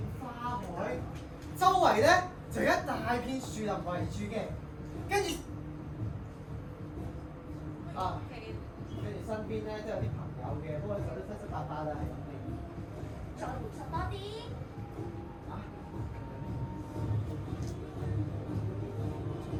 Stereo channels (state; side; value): identical; both; correlation 1.00